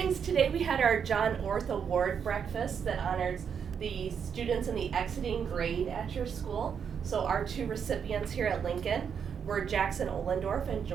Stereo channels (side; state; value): left; quieter; 7.2 dB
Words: today we had our John Orth Award breakfast that honors the students in the exiting grade at your school. So our two recipients here at Lincoln were Jackson Ohlendorf and